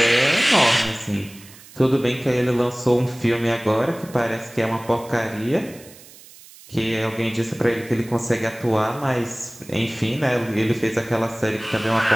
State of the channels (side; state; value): right; noise; hiss, 21 dB below the sound